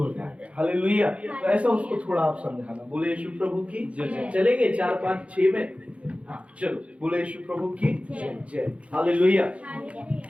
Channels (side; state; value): left; late; 0.062 ms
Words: जाएगा। हालेलुया। तो ऐसा उसको थोड़ा आप समझाना। बोले यीशु प्रभु की जय। चलेंगे 4, 5, 6 में? हाँ चलो, बोले यीशु प्रभु की जय। हालेलुया।